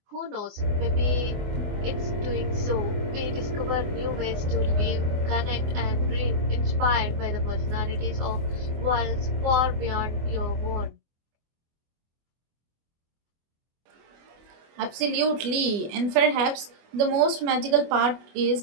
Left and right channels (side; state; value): left; late; 24 ms